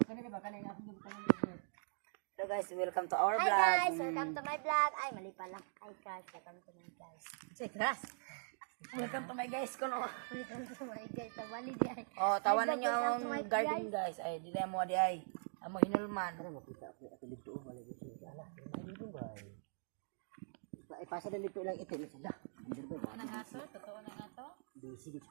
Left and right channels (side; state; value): left; silent; digital silence